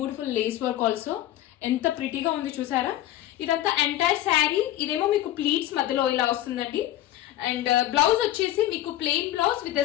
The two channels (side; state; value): right; quieter; 13.6 dB